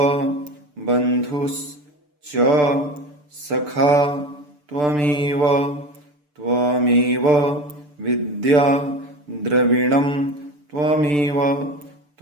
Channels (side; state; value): left; late; 6.8 ms